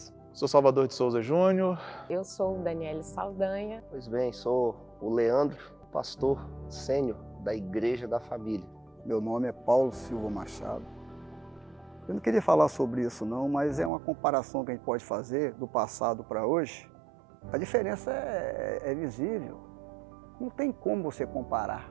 Sou Salvador de Souza Júnior. Eu sou Daniele Saldanha. Pois bem, sou o Leandro, pastor sênior da Igreja da Família. Meu nome é Paulo Silva Machado. Eu não queria falar sobre isso não, mas é uma comparação que a gente pode fazer do passado para hoje. A diferença é visível, não tem como você comparar.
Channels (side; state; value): left; drops out; at 13.9 s